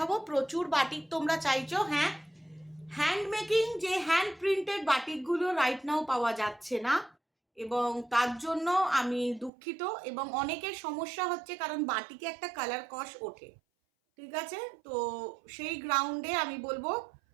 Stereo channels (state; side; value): drops out; left; at 9.5 s